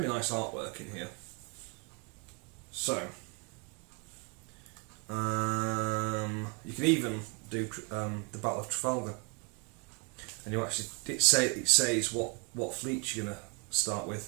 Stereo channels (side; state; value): left; quieter; 34.0 dB